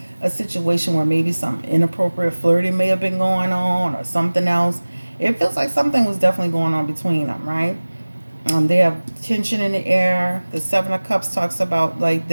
a situation where maybe some inappropriate flirting may have been going on or something else. It feels like something was definitely going on between them, right? They have tension in the air. The Seven of Cups talks about like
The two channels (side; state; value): both; inverted; correlation -1.00